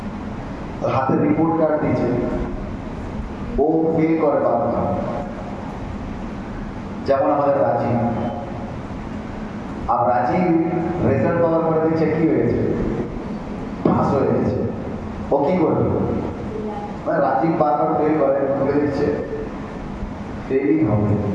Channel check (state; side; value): identical; both; correlation 1.00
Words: হাতে রিপোর্ট কার্ড দিয়েছে, ও ফেল করে বারবার। যেমন আমাদের রাজি, আর রাজি রেজাল্ট পাওয়ার পরে দেখছে কি হয়েছে, পাস হয়ে গেছে। ও কি করবে? মানে রাজি বারবার ফেল করে, খুলে দিচ্ছে ফেলই হবে,